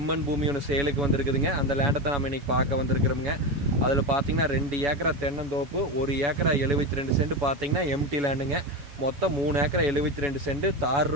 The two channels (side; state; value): left; late; 7.1 ms